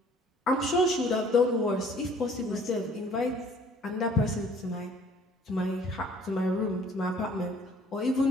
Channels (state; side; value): normal; both; correlation 0.56